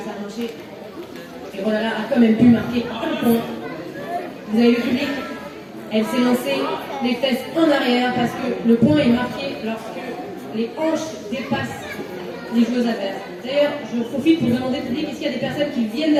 a marché? Et Rolala a quand même pu marquer un point. Vous avez le public? Elle s'est lancée les fesses en arrière parce que le point est marqué lorsque les hanches dépassent les joueuses adverses. D'ailleurs, je profite pour demander au public, est-ce qu'il y a des personnes qui viennent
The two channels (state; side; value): identical; both; correlation 1.00